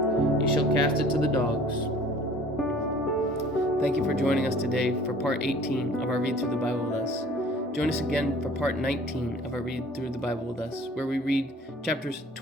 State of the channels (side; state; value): both; normal; correlation 0.49